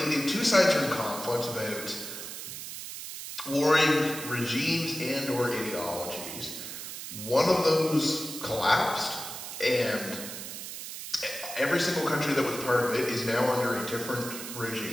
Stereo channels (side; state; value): right; noise; hiss, 9 dB below the sound